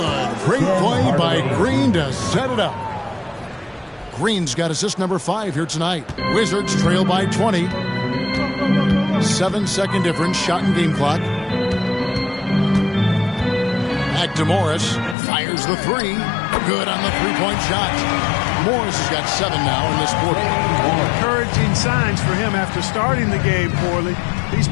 Great play by Green to set it up. Green's got assist number 5 here tonight. Wizards trail by 20. 7-second difference. Shot and game clock. Back to Morris. Fires the 3. Good on the three-point shot. Morris has got 7 now in this quarter. Encouraging signs for him after starting the game poorly. He's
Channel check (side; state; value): right; drops out; at 15.2 s